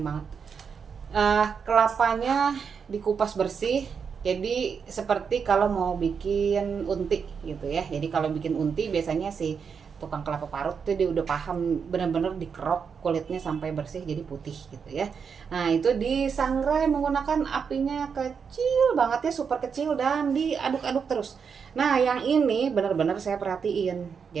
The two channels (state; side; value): quieter; left; 6.3 dB